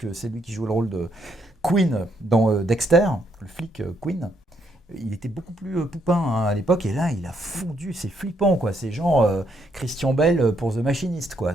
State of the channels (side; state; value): both; normal; correlation 0.74